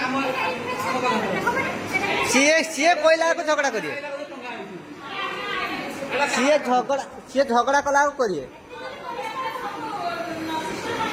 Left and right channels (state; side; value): identical; both; correlation 1.00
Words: ସିଏ କହିଲା ଝଗଡା କରିବେ ସିଏ ଝଗଡା କଲା କରିବେ